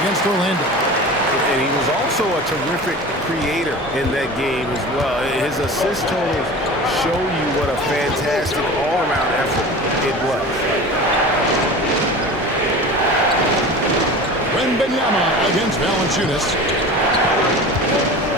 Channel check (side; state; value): both; normal; correlation 0.35